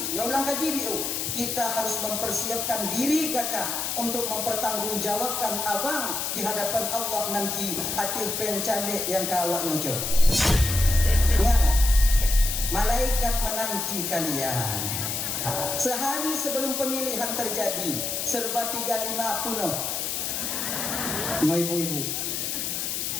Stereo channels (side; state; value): left; noise; hiss, 2 dB below the sound